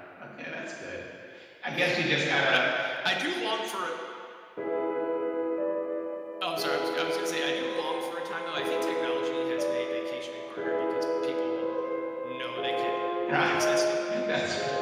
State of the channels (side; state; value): both; identical; correlation 1.00